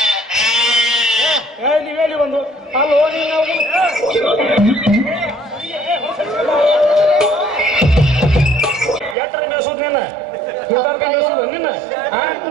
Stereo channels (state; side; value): drops out; left; at 9.2 s